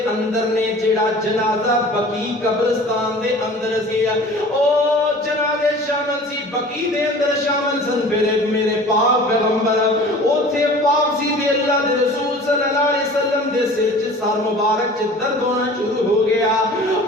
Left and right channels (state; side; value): normal; both; correlation 0.43